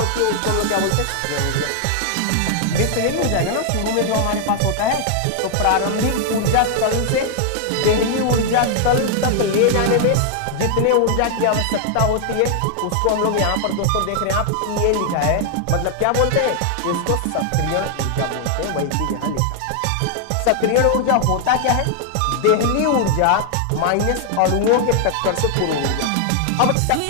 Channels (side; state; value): both; different; correlation 0.00